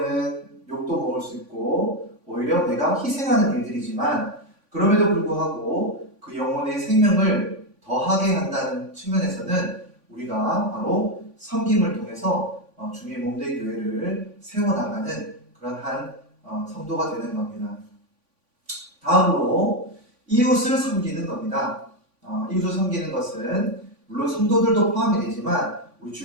욕도 먹을 수 있고, 오히려 내가 희생하는 일들이지만, 그럼에도 불구하고 그 영혼의 생명을 더하게 한다는 측면에서는 우리가 바로 섬김을 통해서 주님의 몸된 교회를 세워나가는 그런 한 성도가 되는 겁니다. 다음으로 이웃을 섬기는 겁니다. 이웃을 섬기는 것은 물론 성도들도 포함이 되지만 우리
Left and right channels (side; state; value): left; late; 3.5 ms